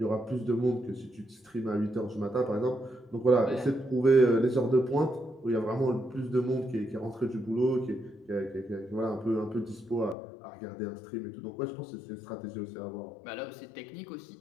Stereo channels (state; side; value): drops out; right; at 10.2 s